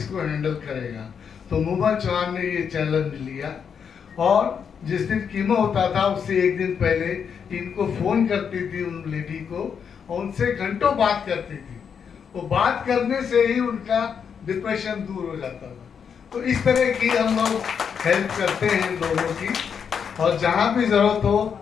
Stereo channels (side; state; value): right; quieter; 7.0 dB